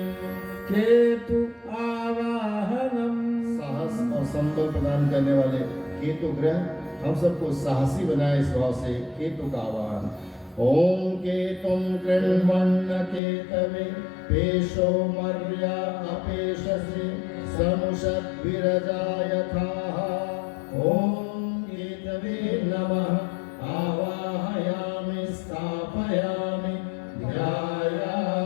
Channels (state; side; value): drops out; right; at 13.2 s